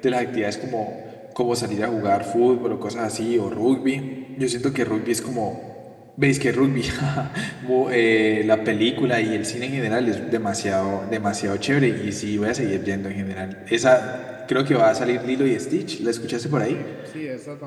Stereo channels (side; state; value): both; identical; correlation 1.00